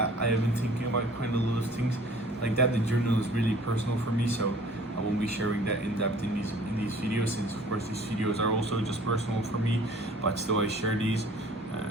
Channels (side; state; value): both; normal; correlation 0.51